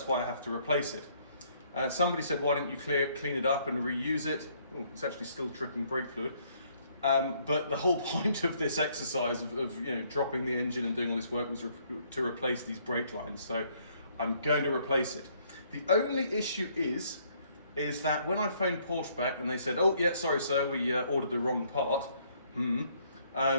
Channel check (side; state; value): both; inverted; correlation -0.66